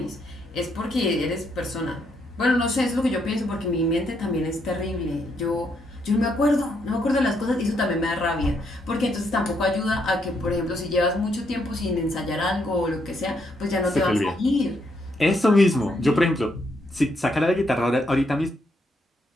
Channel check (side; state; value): both; normal; correlation 0.76